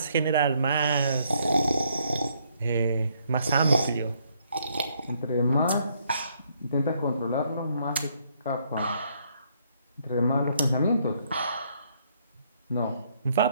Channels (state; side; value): inverted; both; correlation -0.70